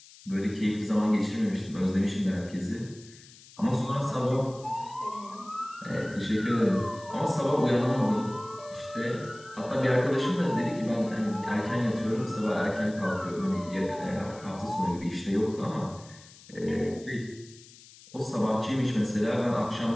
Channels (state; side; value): noise; left; hiss, 22 dB below the sound